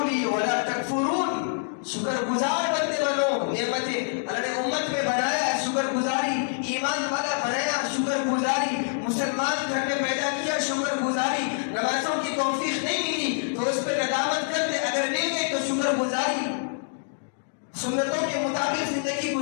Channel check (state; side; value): silent; right; digital silence